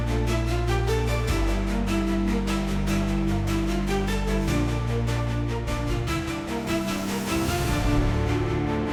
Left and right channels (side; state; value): both; identical; correlation 1.00